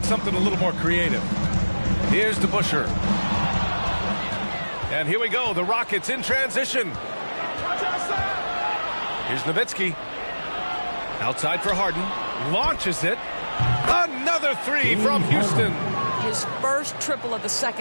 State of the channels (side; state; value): both; inverted; correlation -1.00